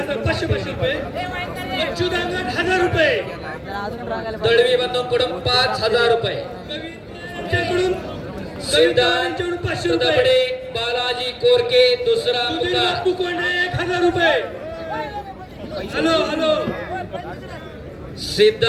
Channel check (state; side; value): identical; both; correlation 1.00